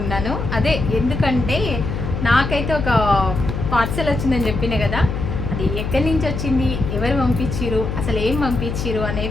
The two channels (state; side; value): noise; left; hum, 3 dB below the sound